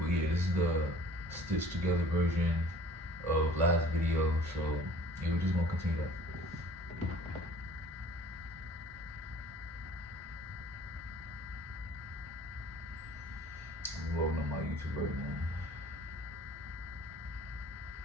yeah, this is the stitched together version of last video. So yeah, we're just gonna continue that. I'm loading on my YouTube right now.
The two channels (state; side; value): normal; both; correlation 0.50